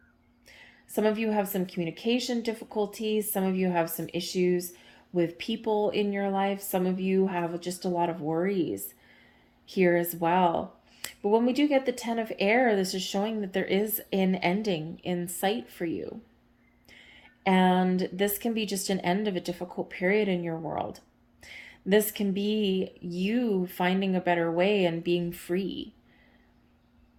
Some of you have some communication difficulties. Some of you have some issues with people in your life. Some of you have just a lot of worries here as well. But when we do get the 10 of air, this is showing that there is an ending in sight for you. And this can be just an end of a difficult period in your world. This can be you finding a better way and being free.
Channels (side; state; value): both; identical; correlation 1.00